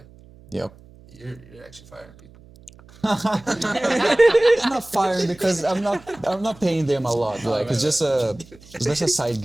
Yep. You're actually firing people. It's not firing because I'm not paying them a lot. Like it's just a side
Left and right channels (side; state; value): right; noise; hum, 24 dB below the sound